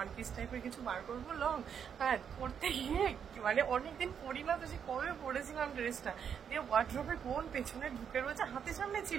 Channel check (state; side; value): quieter; left; 7.7 dB